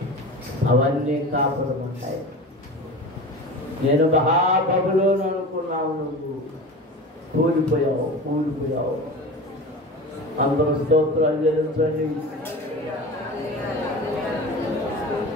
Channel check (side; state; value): both; normal; correlation 0.32